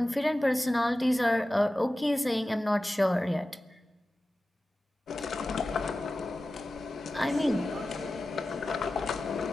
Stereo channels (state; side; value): normal; both; correlation 0.95